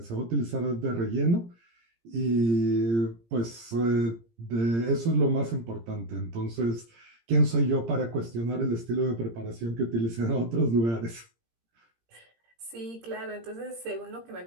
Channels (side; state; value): left; late; 17 ms